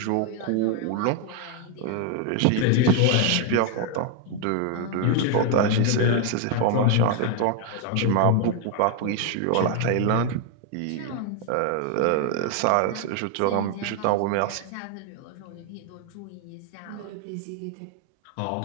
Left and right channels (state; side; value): different; both; correlation 0.01